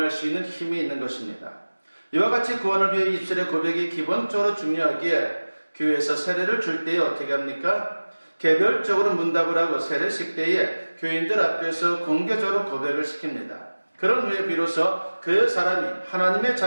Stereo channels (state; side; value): inverted; both; correlation -1.00